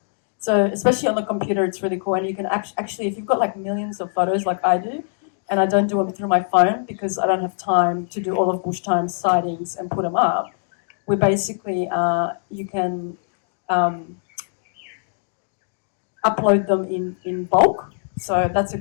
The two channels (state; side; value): silent; right; digital silence